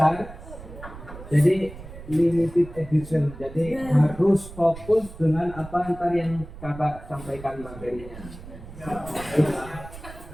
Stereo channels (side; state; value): right; noise; rumble, 15 dB below the sound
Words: jadi limited edition. Jadi harus fokus dengan apa ntar yang kakak sampaikan materinya.